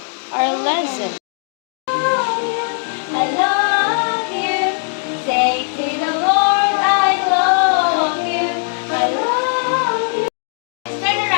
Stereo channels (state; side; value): silent; right; 56 dB below the other